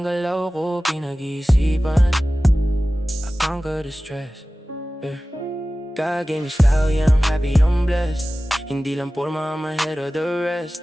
galaw ko pinag-iisipan. I conquer the stress, yeah. God gave me style, yeah, I'm happy, I'm blessed. Hindi lang porma, I'm ahead of the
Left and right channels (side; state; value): both; normal; correlation 0.96